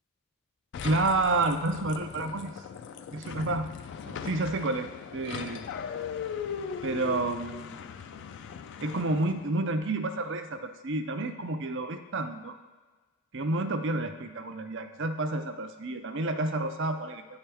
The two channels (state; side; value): normal; both; correlation 0.23